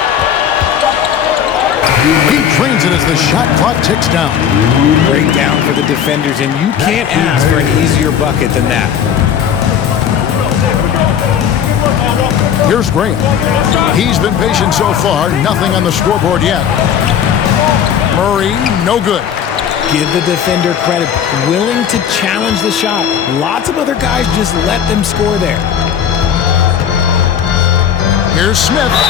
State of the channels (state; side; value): quieter; right; 8.6 dB